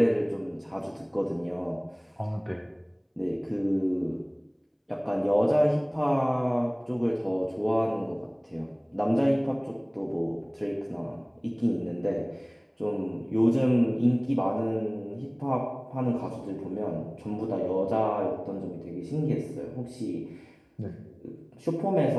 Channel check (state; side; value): identical; both; correlation 1.00